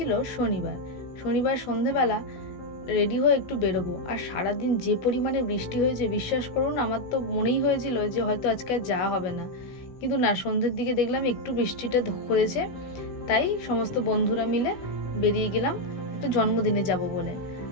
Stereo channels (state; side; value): late; right; 16 ms